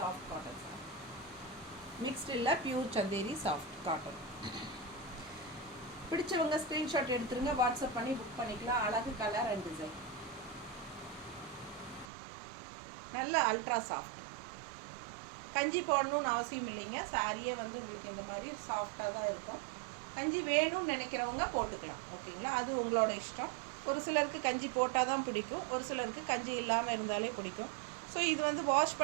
cotton sir. Mixed இல்லை, பியூர் சந்தேரி சாஃப்ட் காட்டன். பிடிச்சவங்க ஸ்க்ரீன்ஷாட் எடுத்துருங்க, வாட்ஸ்அப் பண்ணி புக் பண்ணிக்கலாம். அழகு கலர் அண்ட் டிசைன். நல்ல அல்ட்ரா சாஃப்ட். கஞ்சி போடணும்னு அவசியம் இல்லைங்க. சாரியே வந்து உங்களுக்கு இந்த மாதிரி சாஃப்டாக தான் இருக்கும். கஞ்சி வேணும்னு நினைக்கிறவங்க போட்டுக்கலாம். ஓகேங்களா? அது உங்களோட இஷ்டம். ஒரு சிலருக்கு கஞ்சி போட்டால் தான் பிடிக்கும், ஒரு சிலருக்கு கஞ்சி இல்லாமல் இருந்தாலே பிடிக்கும். ஸோ இது வந்து வாஷ்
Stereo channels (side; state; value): left; drops out; at 12.1 s